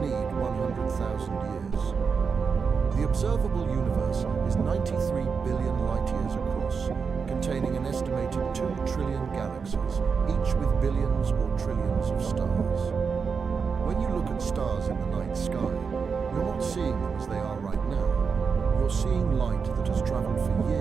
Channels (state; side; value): quieter; left; 5.6 dB